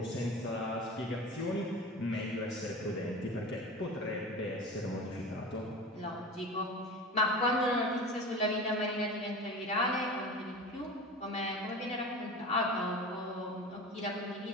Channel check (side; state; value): both; normal; correlation 0.33